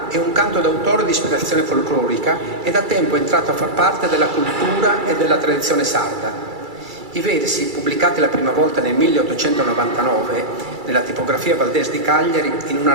è un canto d'autore di ispirazione folclorica e da tempo è entrato a far parte della cultura e della tradizione sarda. I versi, pubblicati la prima volta nel 1899 nella tipografia Valdés di Cagliari in una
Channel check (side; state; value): left; late; 2.3 ms